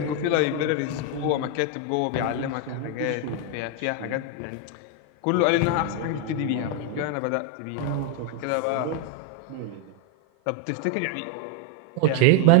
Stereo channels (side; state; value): both; different; correlation 0.01